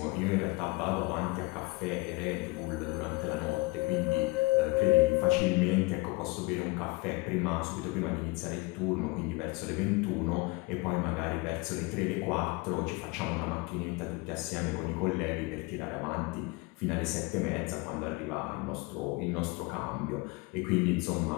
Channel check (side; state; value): right; quieter; 24.6 dB